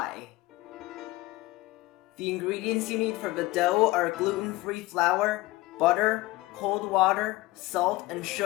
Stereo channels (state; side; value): quieter; right; 19.6 dB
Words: The ingredients you need for the dough are gluten-free flour, butter, cold water, salt, and